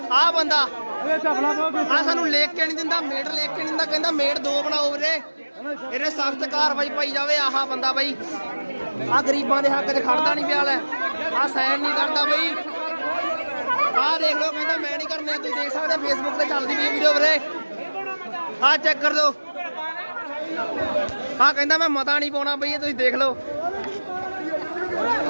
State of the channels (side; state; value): both; inverted; correlation -1.00